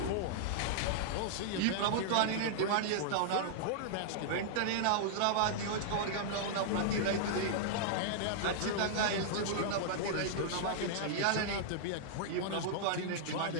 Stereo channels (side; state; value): both; different; correlation -0.01